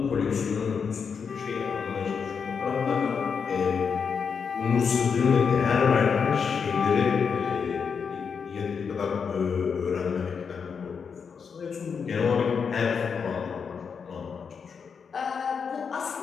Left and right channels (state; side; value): quieter; right; 6.2 dB